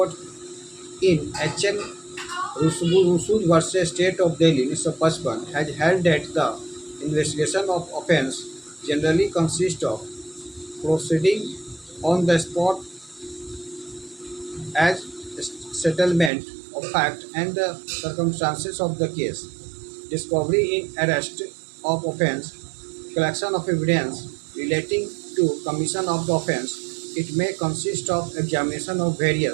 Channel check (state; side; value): drops out; left; at 16.3 s